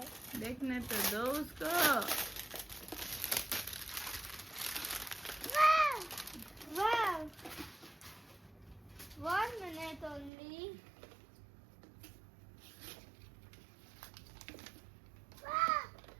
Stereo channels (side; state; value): left; drops out; at 10.3 s